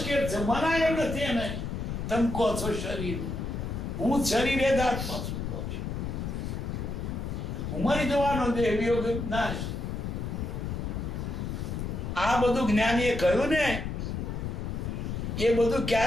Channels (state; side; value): noise; left; rumble, 4 dB below the sound